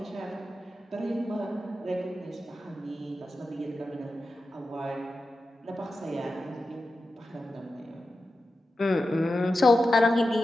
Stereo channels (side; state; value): both; normal; correlation 0.91